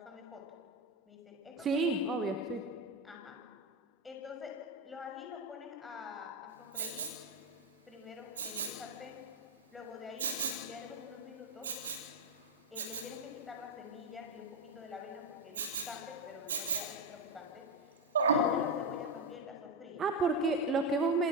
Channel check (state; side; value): normal; both; correlation 0.10